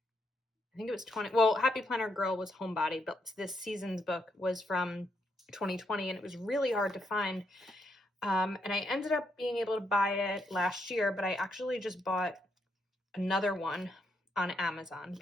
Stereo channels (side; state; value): both; normal; correlation 0.78